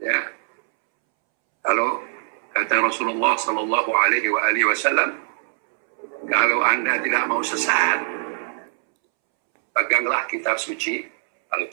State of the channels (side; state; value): left; silent; 64 dB below the other